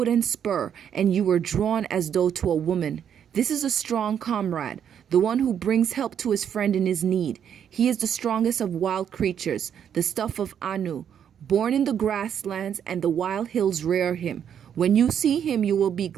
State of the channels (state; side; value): quieter; left; 8.7 dB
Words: spur, and you were drawn as though to a woman. This is a strong comrade, the one who brings help to his friend in his need. He is the strongest of wild creatures, the stuff of Anu. Born in the grasslands, and the wild hills rear him. When you see him, you will be